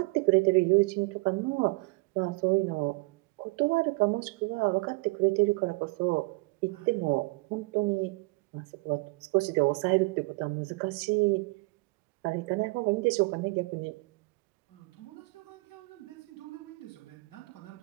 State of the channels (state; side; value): quieter; left; 26.8 dB